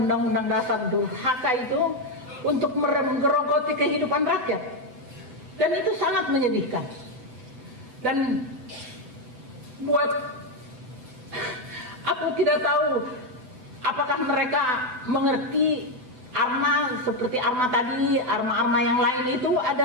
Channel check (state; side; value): late; left; 7.9 ms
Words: undang-undang dasar durhaka itu untuk menggerogoti kehidupan rakyat. Dan itu sangat menyedihkan. Dan buat aku tidak tahu apakah mereka mengerti Arma seperti Arma tadi, Arma-Arma yang lain itu